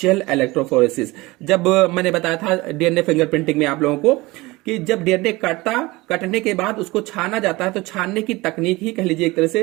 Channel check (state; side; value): quieter; left; 21.6 dB